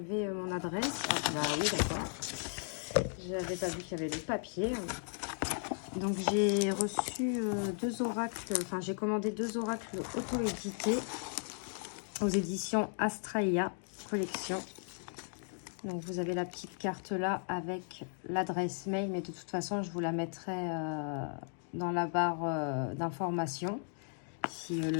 mon adresse. Ah bah oui, d'accord. J'avais pas vu qu'il y avait le papier. Donc j'ai reçu deux oracles, enfin j'ai commandé deux oracles auto-édités aux éditions Astraea Collection. Donc vous avez la petite carte là avec l'adresse mail, mais de toute façon je vous la mettrai dans la barre d'informations si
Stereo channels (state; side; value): silent; right; 54 dB below the other